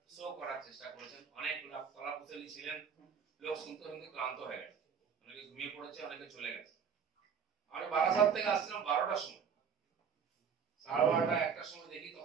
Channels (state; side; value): quieter; left; 6.9 dB